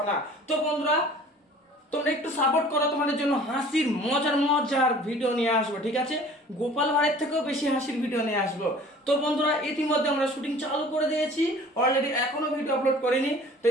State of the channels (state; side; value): normal; both; correlation 0.48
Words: না। তো বন্ধুরা তোমরা একটু সাপোর্ট করো, তোমাদের জন্য হাসির মজার ভিডিও নিয়ে আসবো, ঠিক আছে? গোপাল ভাঁড়ের থেকেও বেশি হাসির ভিডিও নিয়ে আসবো। তো বন্ধুরা ইতিমধ্যে আমরা শুটিং চালু করে দিয়েছি, অলরেডি এখনো ভিডিও আপলোড করিনি। তো